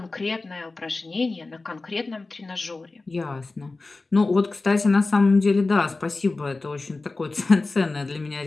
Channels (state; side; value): quieter; right; 3.5 dB